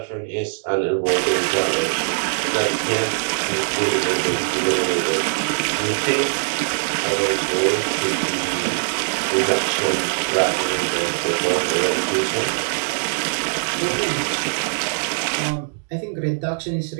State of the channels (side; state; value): left; silent; digital silence